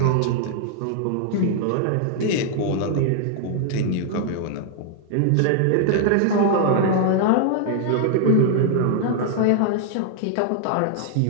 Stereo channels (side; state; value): both; different; correlation -0.01